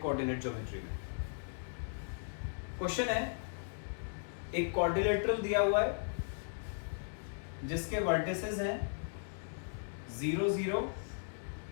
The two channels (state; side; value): silent; right; digital silence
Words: ज्योमेट्री में। क्वेश्चन है, एक क्वाड्रिलेटरल दिया हुआ है जिसके वर्टिसेस हैं 0 0